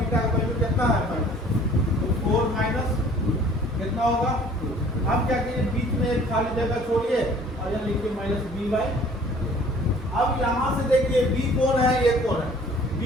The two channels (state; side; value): normal; both; correlation 0.53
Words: का वैल्यू कितना है माइनस, तो 4 माइनस कितना होगा 2। अब क्या कीजिए, बीच में एक खाली जगह छोड़िए और यहाँ लिखिए -b/। अब यहाँ से देखिए b कौन है, ये कौन है, b